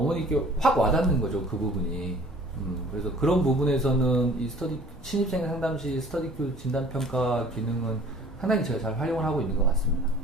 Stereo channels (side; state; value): both; normal; correlation 0.50